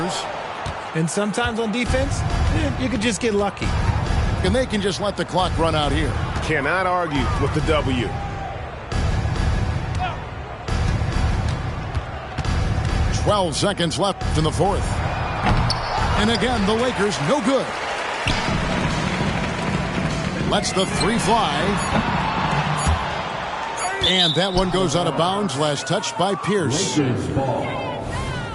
And sometimes on defense, you could just get lucky. And they can just let the clock run out here. Cannot argue with the W. 12 seconds left in the fourth. And again, the Lakers no good. Lets the three fly. And that one goes out of bounds. Last touch by Pierce. Lakers ball.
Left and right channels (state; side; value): identical; both; correlation 1.00